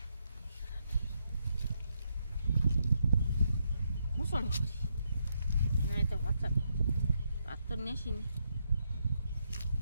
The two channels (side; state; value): both; inverted; correlation -0.79